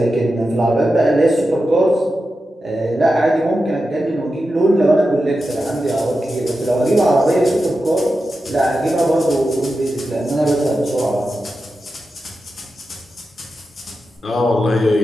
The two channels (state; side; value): normal; both; correlation 0.91